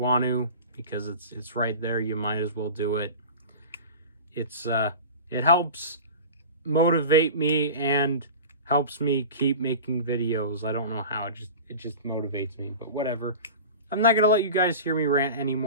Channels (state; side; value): inverted; both; correlation -0.34